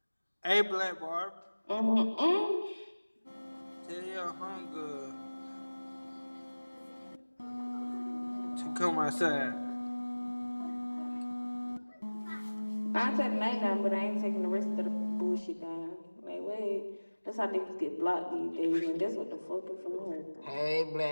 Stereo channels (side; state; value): both; inverted; correlation -1.00